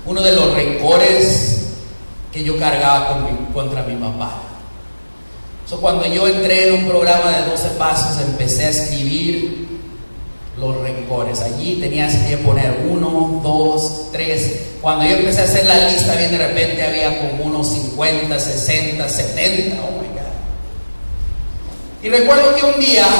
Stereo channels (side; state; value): both; inverted; correlation -1.00